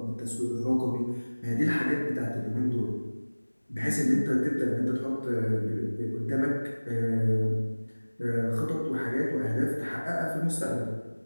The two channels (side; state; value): both; inverted; correlation -1.00